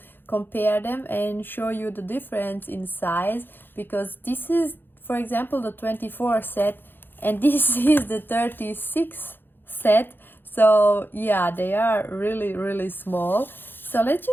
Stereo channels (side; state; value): right; late; 0.098 ms